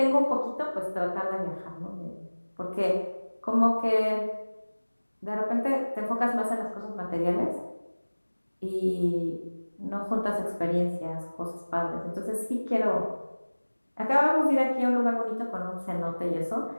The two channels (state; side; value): inverted; both; correlation -1.00